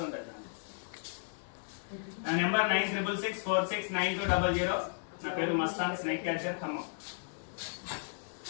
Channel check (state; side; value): silent; right; digital silence